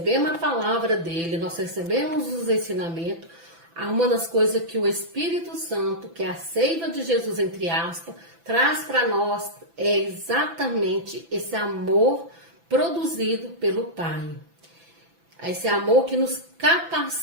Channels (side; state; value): left; late; 6.0 ms